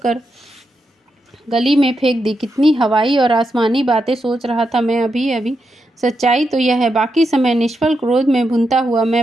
गली में फेंक दी। कितनी हवाई और आसमानी बातें सोच रहा था मैं अभी अभी। सच्चाई तो यह है, बाकी समय निष्फल क्रोध में भुनता हुआ मैं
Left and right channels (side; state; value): both; normal; correlation 0.85